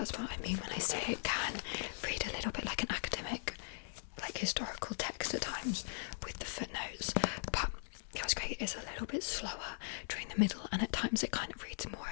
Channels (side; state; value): right; silent; 51 dB below the other